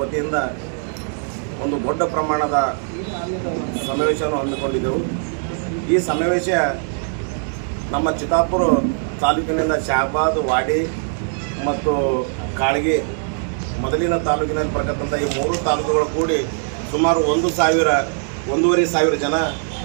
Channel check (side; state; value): left; silent; 55 dB below the other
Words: ವತಿಯಿಂದ ಒಂದು ದೊಡ್ಡ ಪ್ರಮಾಣದ ಸಮಾವೇಶವನ್ನು ಹಮ್ಮಿಕೊಂಡಿದ್ದೆವು. ಈ ಸಮಾವೇಶ ನಮ್ಮ ಚಿತ್ತಾಪುರ ತಾಲೂಕಿನಿಂದ ಶಹಾಬಾದ್, ವಾಡಿ ಮತ್ತು ಕಾಳಗಿ ಮೊದಲಿನ ತಾಲೂಕಿನಲ್ಲಿ ಬರತಕ್ಕಂಥ ಈ 3 ತಾಲೂಕುಗಳು ಕೂಡಿ ಸುಮಾರು 1,500 ಜನ